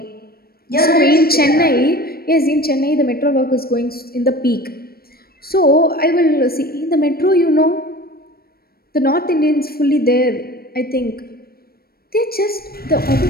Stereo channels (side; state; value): right; late; 0.44 ms